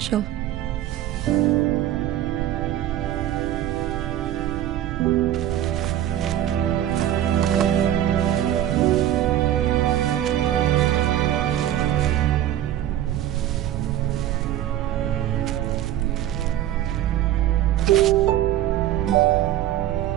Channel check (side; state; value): left; quieter; 12.3 dB